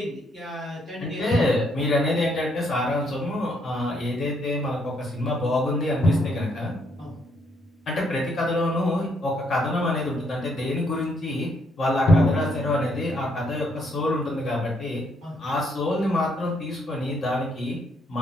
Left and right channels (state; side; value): normal; both; correlation 0.72